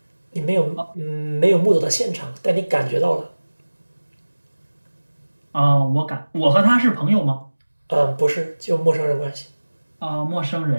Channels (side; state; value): both; inverted; correlation -1.00